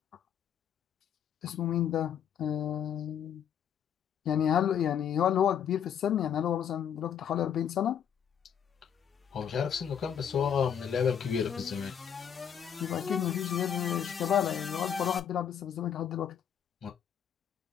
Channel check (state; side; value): quieter; right; 8.5 dB